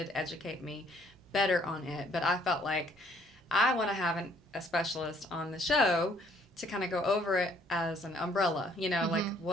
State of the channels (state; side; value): normal; both; correlation 0.63